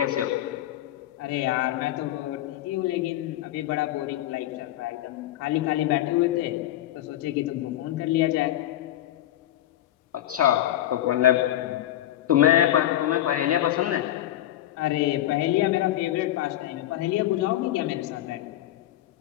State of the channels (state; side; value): quieter; right; 13.2 dB